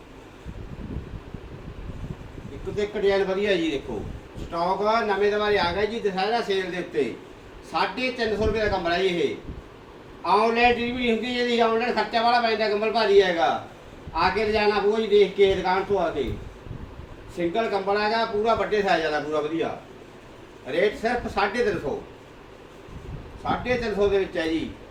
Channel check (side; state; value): both; identical; correlation 1.00